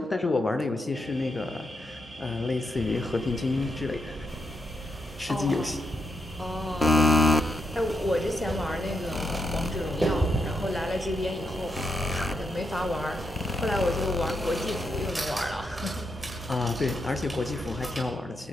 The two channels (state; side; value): normal; both; correlation 0.82